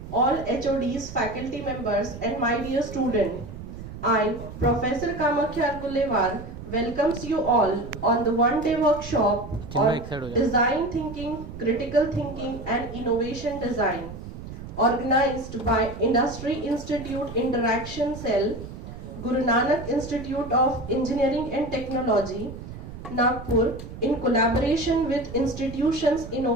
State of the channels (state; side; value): noise; right; rumble, 12 dB below the sound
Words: all HODs, faculty members and my dear student, I, Professor Kamakhya Argulewar, welcomes you all on the one-day workshop on design thinking, critical thinking and innovation design, organized by Industry Institute Interaction Cell, Guru Nanak Institute of Engineering and Technology, Nagpur, in collaboration with Institutions